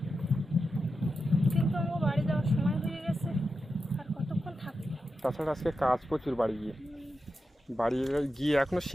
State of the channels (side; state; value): both; normal; correlation 0.90